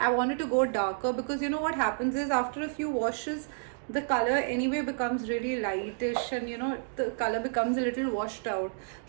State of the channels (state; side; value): silent; left; digital silence